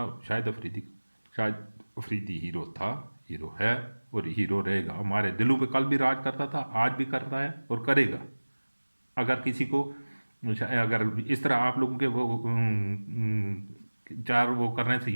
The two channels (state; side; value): inverted; both; correlation -1.00